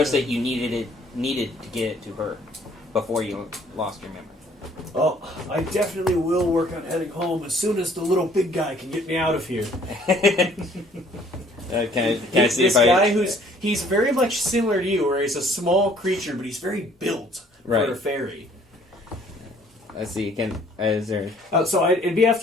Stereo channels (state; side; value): normal; both; correlation 0.59